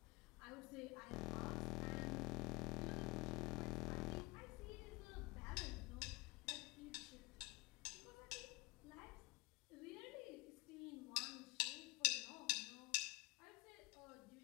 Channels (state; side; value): quieter; right; 23.9 dB